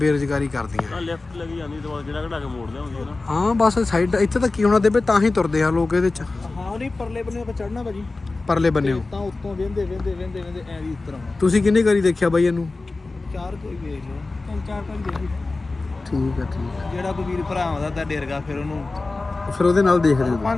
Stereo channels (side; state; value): right; quieter; 3.4 dB